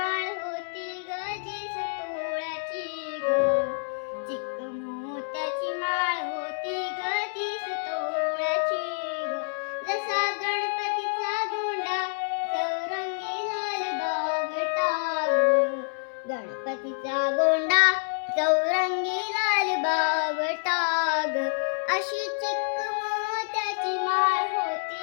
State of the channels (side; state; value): right; silent; 60 dB below the other